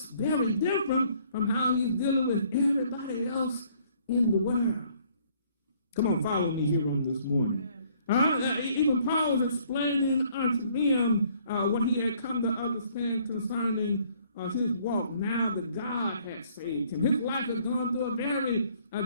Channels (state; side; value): inverted; both; correlation -0.62